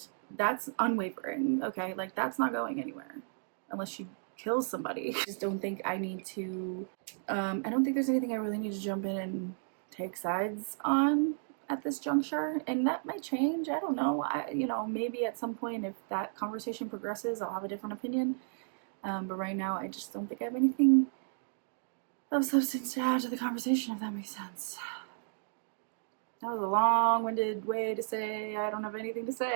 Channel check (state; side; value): silent; left; digital silence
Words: that's unwavering, okay? Like, that's not going anywhere unless she kills somebody. I just don't think I need to, I don't think there's anything I really need to jump in and take sides on at this juncture, and that might change. I don't know. You know, maybe at some point if that conversation progresses, I'll have a different opinion. But right now, I just don't think I have anything of substance to add to the conversation, if that makes sense. That was a long-winded way to say I don't have anything to